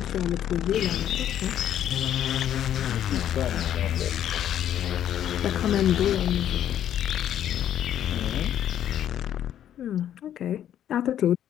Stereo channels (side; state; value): right; quieter; 10.7 dB